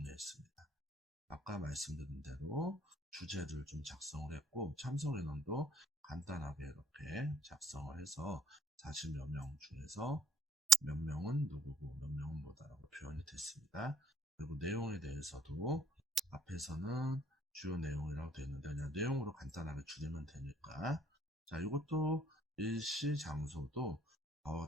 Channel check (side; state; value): both; normal; correlation 0.62